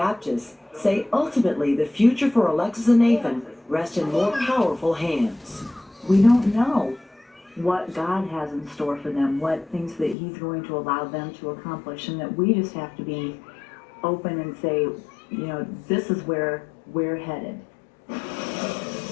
say ultimately the future for Alexis and Nathan rest in more powerful hands. We don't know what God has in store for them, what things that He's going to allow them to accomplish, and that we just have to be open and say, you know, this is where we're headed.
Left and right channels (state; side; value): drops out; right; at 10.2 s